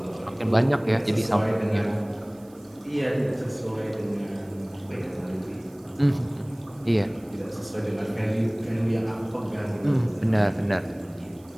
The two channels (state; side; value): noise; right; hiss, 28 dB below the sound